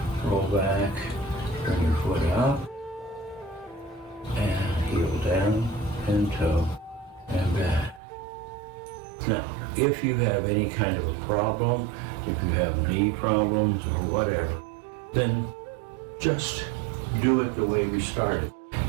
Roll back, turn your foot up. And heel down and toe and back. Now, if you have any kind of a problem, if you have knee problems or whatever, then just do it the way we started.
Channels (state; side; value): drops out; left; at 8.0 s